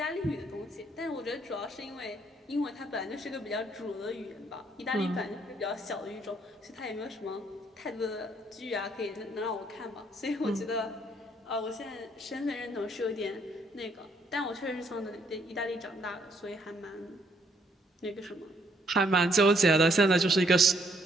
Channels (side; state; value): both; normal; correlation 0.69